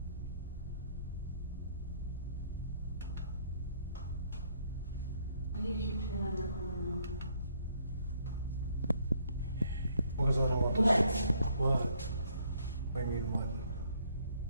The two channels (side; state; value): both; inverted; correlation -0.67